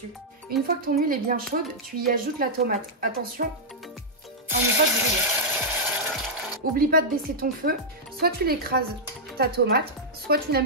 Une fois que ton huile est bien chaude, tu y ajoutes la tomate. Attention à ne pas brûler. Oublie pas de baisser ton feu, soit tu l'écrases ta tomate, soit tu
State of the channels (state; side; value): normal; both; correlation -0.08